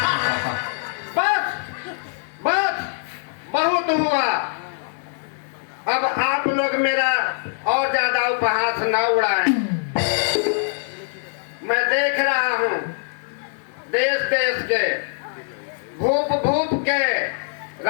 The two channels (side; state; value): right; silent; 64 dB below the other